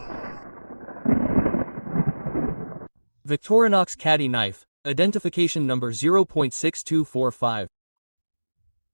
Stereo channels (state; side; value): inverted; both; correlation -1.00